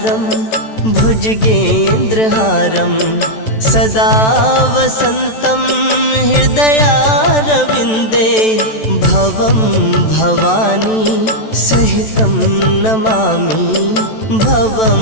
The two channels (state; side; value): late; right; 14 ms